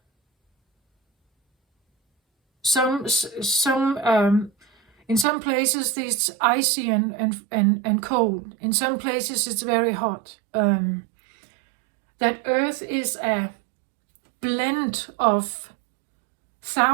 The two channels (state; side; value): drops out; left; at 5.2 s